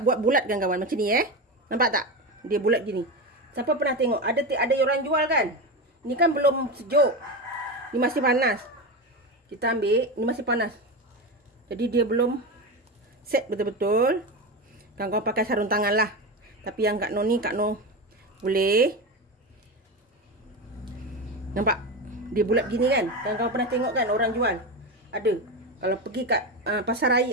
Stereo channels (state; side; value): normal; both; correlation 0.19